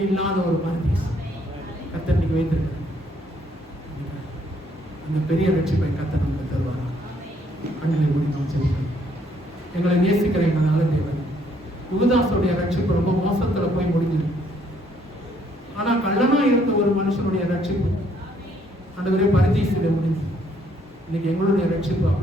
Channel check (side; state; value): both; normal; correlation 0.67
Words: இல்லாத ஒரு பரதீஸ் கர்த்தர் இன்னைக்கு வைத்திருக்கிறார். அந்த பெரிய ரட்சிப்பை கர்த்தர் நமக்கு தருவாரா? கண்களை மூடி நாம் செல்கிறோம். எங்களை நேசிக்கிற எங்கள் நல்ல தேவன், யூதாசுடைய ரட்சிப்பு ரொம்ப மோசத்துல போய் முடிஞ்சது. ஆனா கள்ளனா இருந்த ஒரு மனுஷனுடைய ரட்சிப்பு ஆண்டவரே பரதீசில முடிஞ்சு. இன்னைக்கு எங்களுடைய ரட்சிப்பு